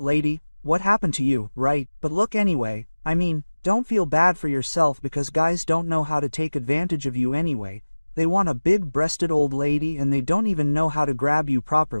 what happened to you, right? But look anyway, I mean, don't feel bad for yourself because guys don't know how to take advantage of you anyway. They want a big-breasted old lady and they don't even know how to grab you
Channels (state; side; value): inverted; both; correlation -1.00